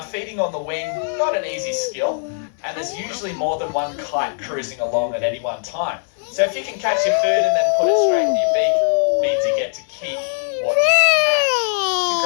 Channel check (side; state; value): right; silent; 64 dB below the other